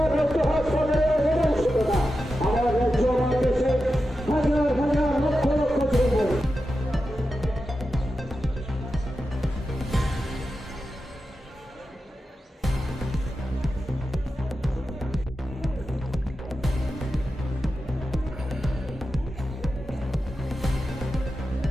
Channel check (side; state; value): both; normal; correlation 0.91